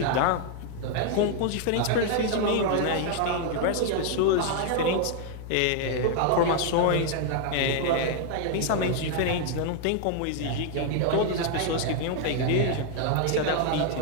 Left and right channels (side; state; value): both; different; correlation 0.00